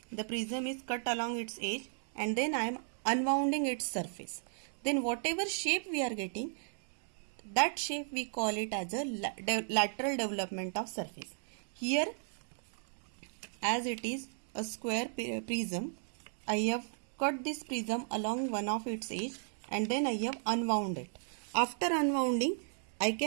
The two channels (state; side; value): silent; left; digital silence